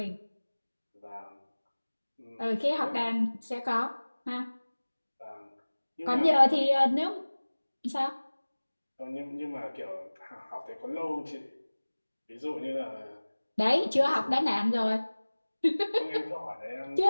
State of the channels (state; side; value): inverted; both; correlation -1.00